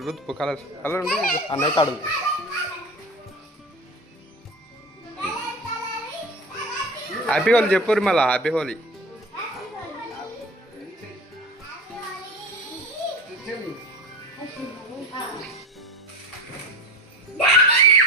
ఉంది అన్నయ్య తాడు. హ్యాపీ హోలీ చెప్పుర్రి మళ్ళా. హ్యాపీ హోలీ.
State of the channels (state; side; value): normal; both; correlation 0.31